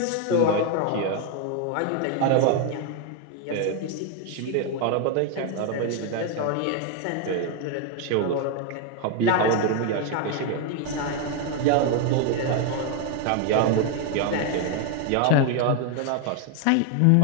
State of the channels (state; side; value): different; both; correlation 0.01